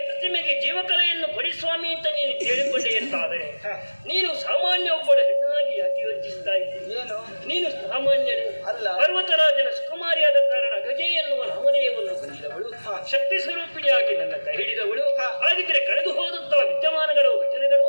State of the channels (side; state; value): both; inverted; correlation -1.00